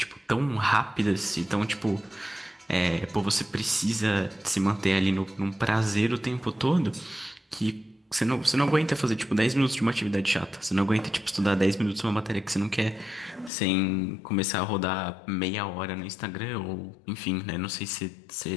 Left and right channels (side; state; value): right; drops out; at 13.5 s